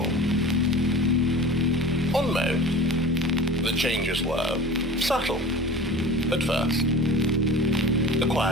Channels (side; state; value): both; normal; correlation 0.37